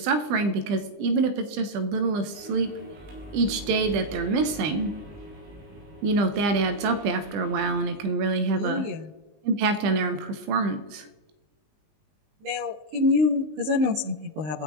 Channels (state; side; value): late; left; 20 ms